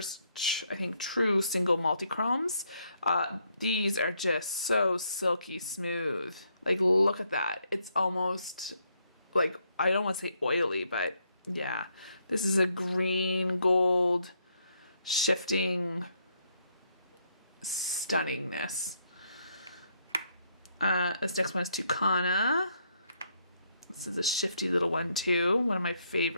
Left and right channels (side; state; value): both; inverted; correlation -0.74